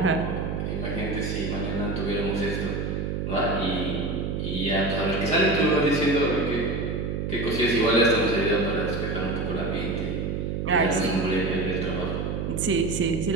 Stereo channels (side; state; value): right; noise; hum, 2 dB below the sound